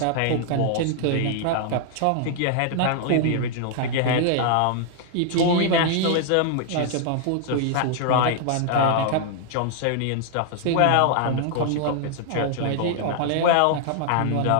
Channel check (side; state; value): both; different; correlation 0.00